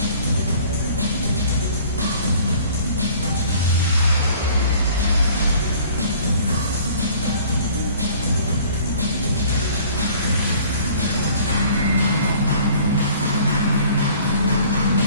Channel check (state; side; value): inverted; both; correlation -0.51